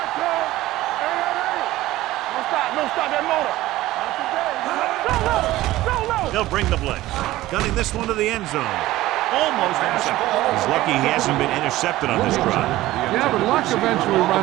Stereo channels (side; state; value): left; quieter; 16.5 dB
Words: comes. Hey. Don't stop that motor. Not today. Go low. Go low. They'll bring the blitz. Gunning this one to the end zone. Almost intercepted. He's lucky he hasn't been intercepted on this drive. Yeah, but luck eventually